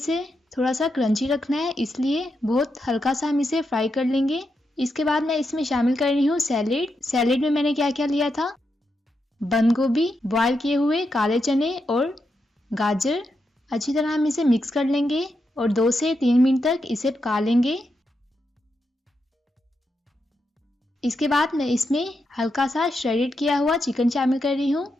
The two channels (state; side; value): normal; both; correlation 0.84